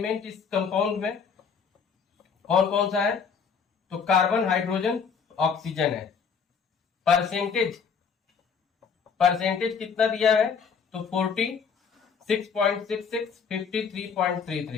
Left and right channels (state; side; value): quieter; right; 6.2 dB